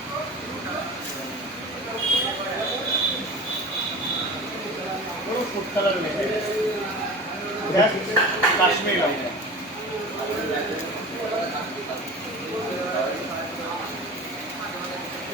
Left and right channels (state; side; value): normal; both; correlation 0.34